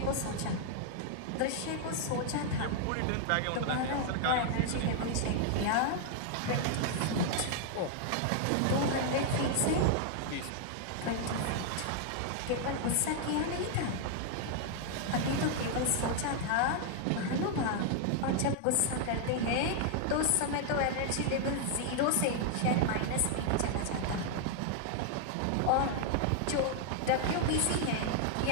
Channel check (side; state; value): both; different; correlation 0.00